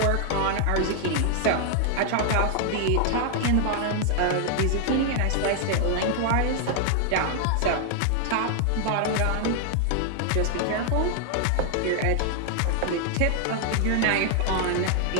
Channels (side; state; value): both; different; correlation 0.00